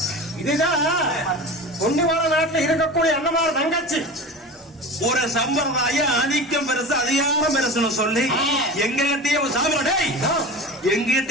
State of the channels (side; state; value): both; normal; correlation 0.33